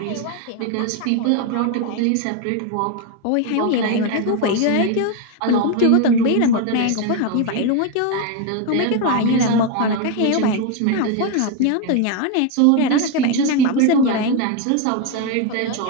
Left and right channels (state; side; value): different; both; correlation 0.02